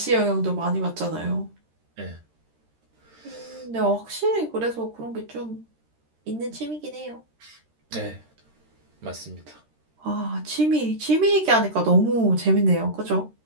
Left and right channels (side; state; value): left; late; 13 ms